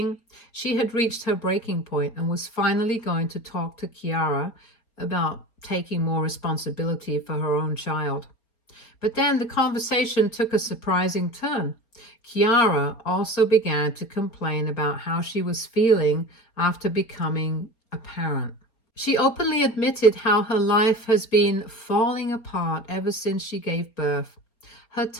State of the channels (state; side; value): late; right; 4.3 ms